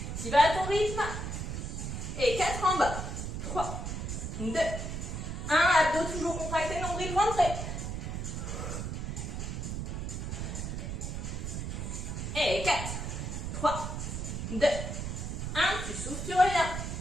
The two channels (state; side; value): noise; right; rumble, 4 dB below the sound